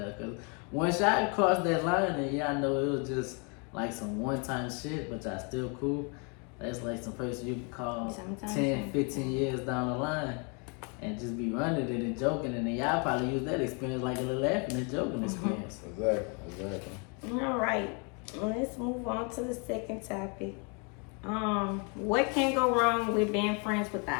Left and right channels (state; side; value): quieter; right; 35.1 dB